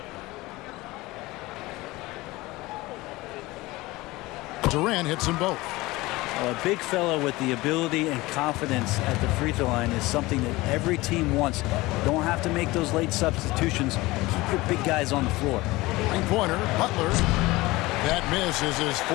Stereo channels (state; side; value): quieter; right; 20.4 dB